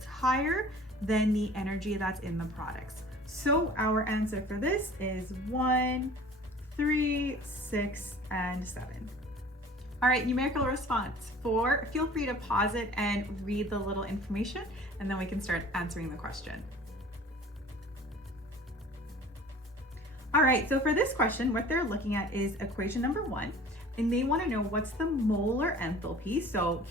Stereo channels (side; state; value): both; normal; correlation 0.46